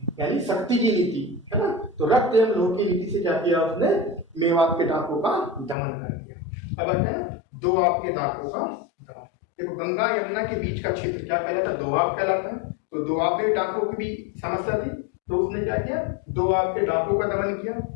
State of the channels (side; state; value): right; drops out; at 5.8 s